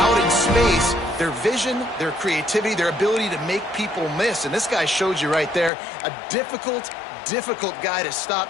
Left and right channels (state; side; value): drops out; right; at 5.7 s